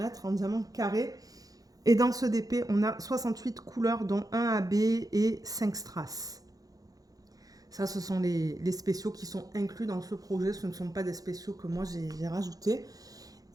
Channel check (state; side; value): late; left; 0.18 ms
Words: en diamant carré. Et dans ce DP, on a 68 couleurs, dont 1 AB et 5 strass. Ça, ce sont les spéciaux qui sont inclus dans ce projet. Ce ne sont pas des spéciaux que moi, j'ai rajoutés.